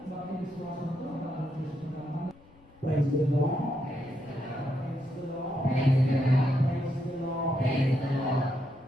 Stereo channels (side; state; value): left; noise; rumble, 27 dB below the sound